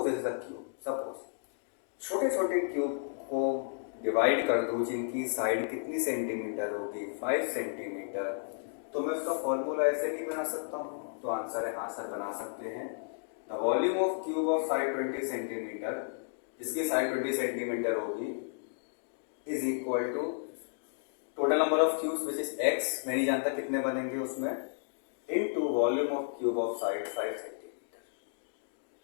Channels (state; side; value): silent; right; digital silence